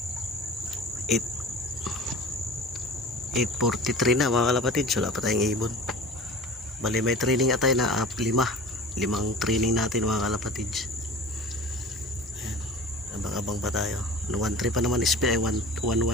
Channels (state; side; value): normal; both; correlation 0.39